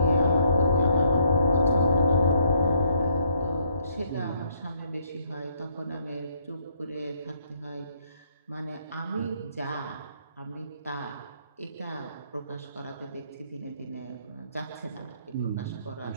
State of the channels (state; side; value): inverted; both; correlation -0.70